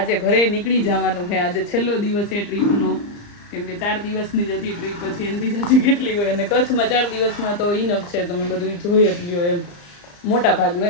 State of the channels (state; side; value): late; right; 34 ms